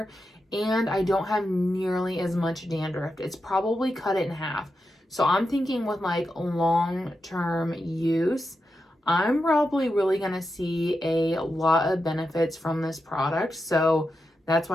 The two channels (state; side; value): normal; both; correlation 0.88